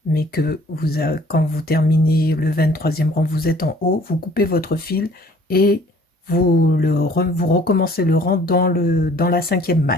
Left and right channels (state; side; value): normal; both; correlation 0.55